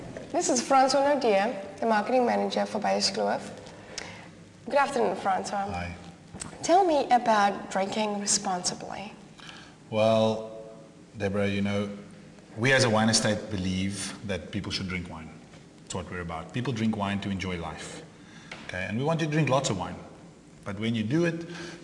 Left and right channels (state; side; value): identical; both; correlation 1.00